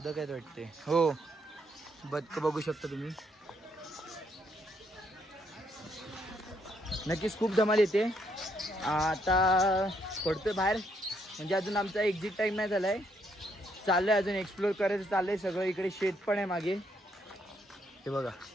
आहेत वाटते. हो, बदक बघू शकता तुम्ही. नक्कीच खूप धमाल येते. आता पडतोय बाहेर, म्हणजे अजून आमचा एक्झिट टाइम नाही झालाय. चाललंय अजून एक्सप्लोर करायचं चाललंय सगळं. इकडे शेत पण आहे मागे, हे बघा.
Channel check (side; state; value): both; normal; correlation 0.73